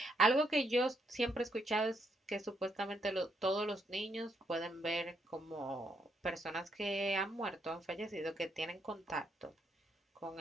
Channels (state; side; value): normal; both; correlation 0.76